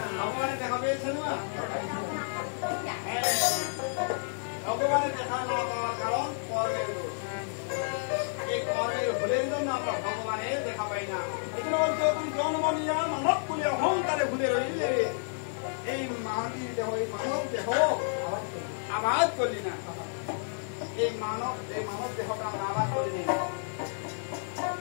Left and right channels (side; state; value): right; silent; digital silence